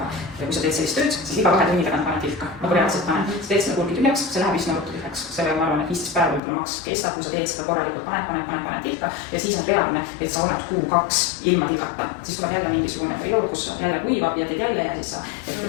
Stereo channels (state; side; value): drops out; right; at 6.4 s